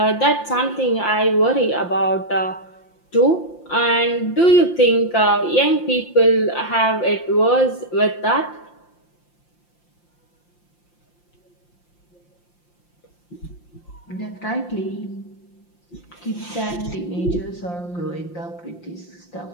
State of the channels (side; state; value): right; late; 5.8 ms